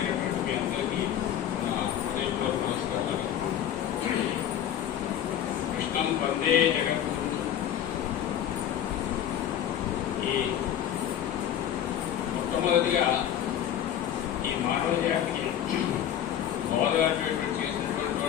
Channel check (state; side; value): quieter; right; 10.3 dB